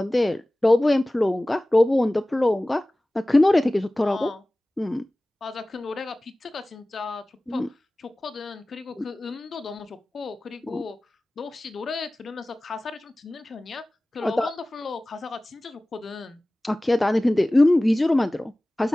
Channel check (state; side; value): normal; both; correlation 0.98